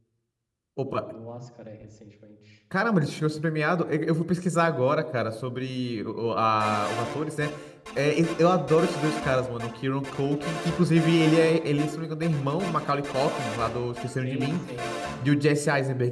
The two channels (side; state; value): both; identical; correlation 1.00